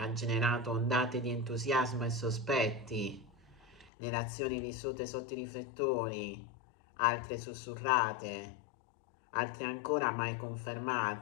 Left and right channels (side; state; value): right; drops out; at 3.9 s